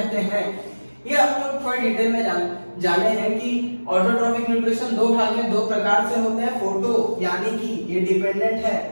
हैं। ये हम लोग थोड़ी डिटेल में जाने हैं कि ऑटोट्रॉफिक न्यूट्रिशन दो भाग में दो प्रकार से होते हैं। फोटो यानी कि ये डिपेंडेंट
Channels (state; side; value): inverted; both; correlation -1.00